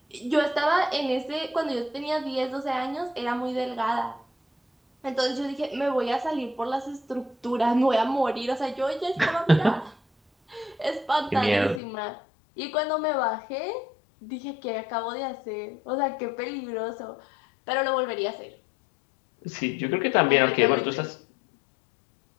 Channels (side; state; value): right; drops out; at 11.8 s